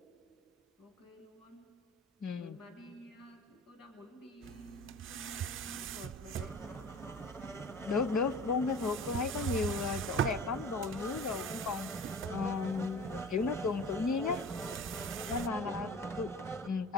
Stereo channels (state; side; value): normal; both; correlation 0.40